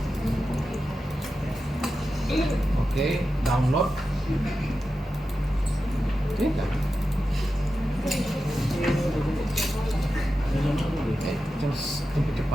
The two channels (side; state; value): both; normal; correlation 0.91